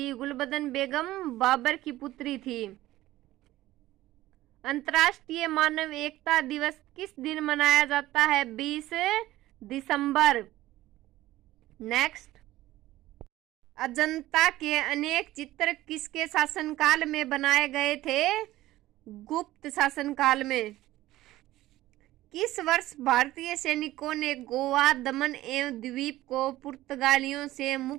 गुलबदन बेगम बाबर की पुत्री थी। अंतर्राष्ट्रीय मानव एकता दिवस किस दिन मनाया जाता है? 20 दिसंबर। नेक्स्ट, अजंता के अनेक चित्र किसके शासनकाल में बनाए गए थे? गुप्त शासनकाल में। किस वर्ष भारतीय सैनिकों ने गोवा, दमन एवं द्वीप को पुर्तगालियों से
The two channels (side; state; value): left; quieter; 16.0 dB